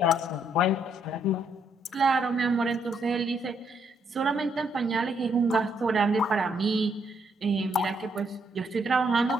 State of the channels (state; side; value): normal; both; correlation 0.73